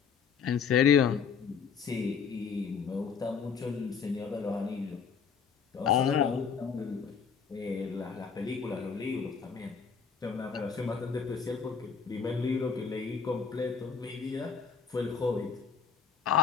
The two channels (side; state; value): right; quieter; 6.4 dB